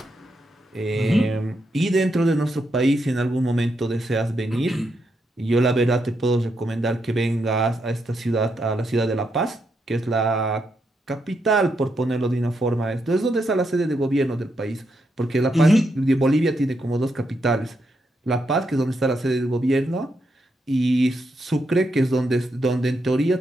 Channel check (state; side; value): normal; both; correlation 0.81